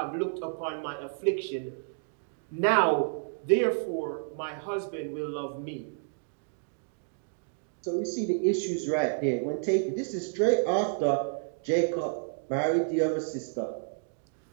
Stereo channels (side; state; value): left; silent; digital silence